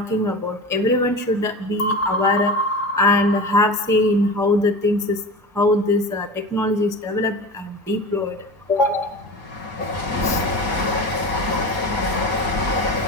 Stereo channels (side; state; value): both; normal; correlation 0.31